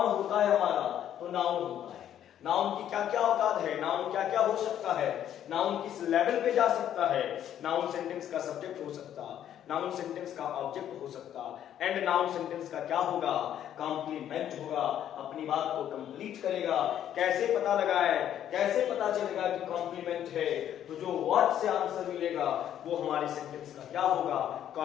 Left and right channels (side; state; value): right; quieter; 10.6 dB